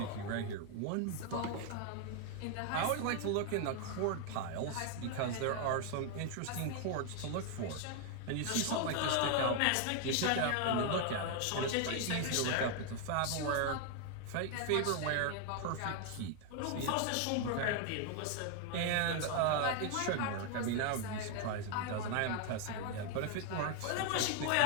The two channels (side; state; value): both; different; correlation 0.00